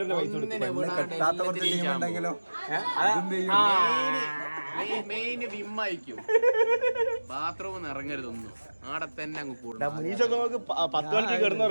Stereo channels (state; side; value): inverted; both; correlation -1.00